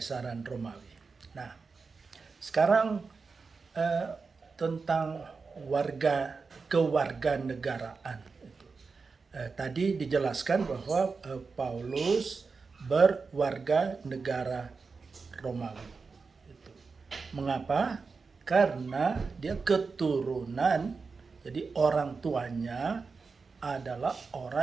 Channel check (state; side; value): quieter; left; 4.7 dB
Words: Romawi. Nah, sekarang tentang kewarganegaraan. Tadi dijelaskan bahwa Paulus berwarga negara Romawi. Mengapa? Karena dia keturunan, jadi orang tuanya adalah